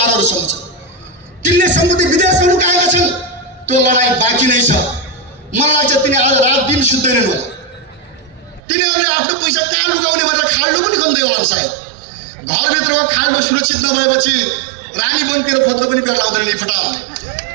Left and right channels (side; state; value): left; drops out; at 8.6 s